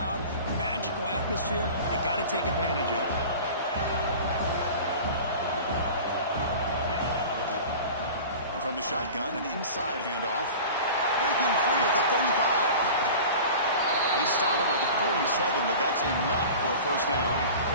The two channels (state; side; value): inverted; both; correlation -0.37